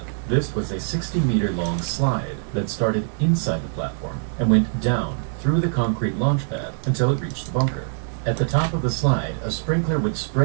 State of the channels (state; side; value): silent; left; 57 dB below the other